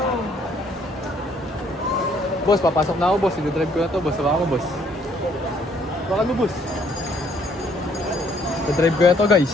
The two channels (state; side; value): normal; both; correlation 0.64